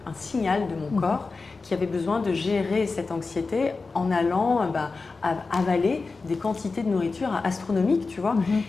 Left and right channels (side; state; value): right; quieter; 4.1 dB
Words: signal de mon corps qui avait besoin de gérer cette anxiété en allant avaler des quantités de nourriture astronomiques, tu vois.